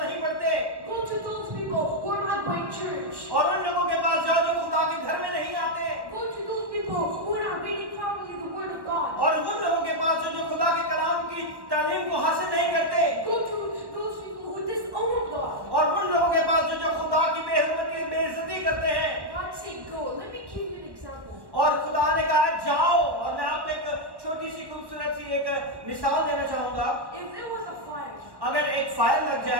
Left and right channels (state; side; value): late; left; 1.1 ms